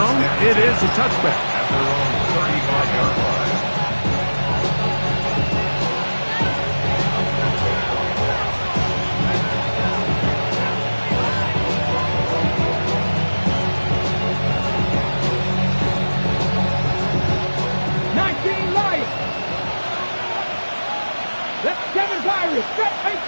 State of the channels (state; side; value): inverted; both; correlation -1.00